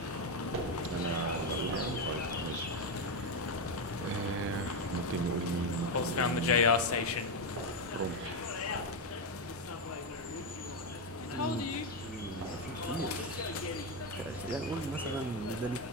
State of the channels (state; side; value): normal; both; correlation 0.07